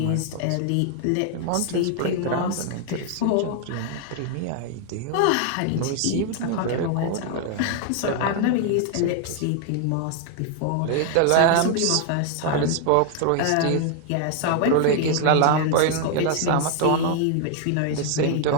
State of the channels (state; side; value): different; both; correlation 0.00